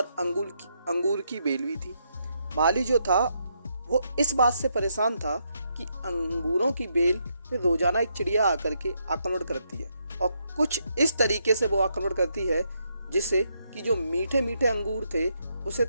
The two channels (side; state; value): both; inverted; correlation -0.78